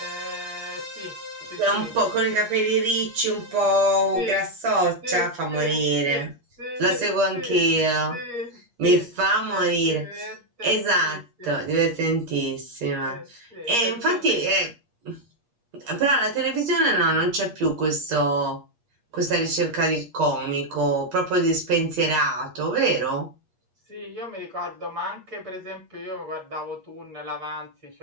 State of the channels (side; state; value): left; late; 8.4 ms